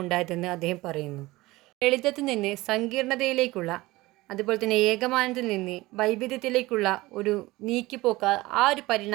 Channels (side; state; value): left; quieter; 19.8 dB